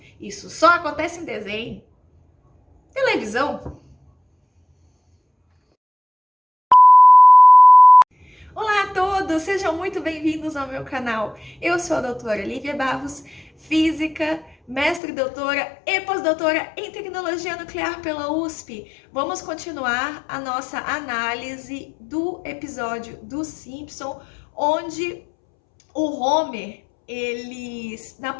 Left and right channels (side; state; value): right; drops out; at 15.0 s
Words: Isso só acontece em desenho, televisão. Olá a todos, sejam muito bem-vindos ao meu canal. Eu sou a doutora Lívia Barros, física, mestre e doutora e pós-doutora em tecnologia nuclear pela USP. Vamos continuar a nossa análise do episódio dos Simpsons, onde o Homer, na